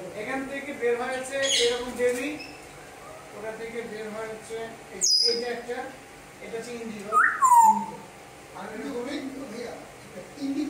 এখান থেকে বের হয়েছে এরকম বেবি, ওটা থেকে বের হয়েছে এই যে একটা, এটা হচ্ছে ইন্ডিগো। আর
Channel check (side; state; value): both; identical; correlation 1.00